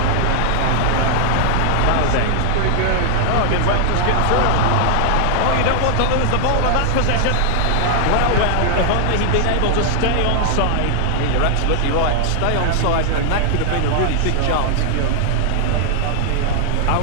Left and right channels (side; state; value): both; different; correlation 0.00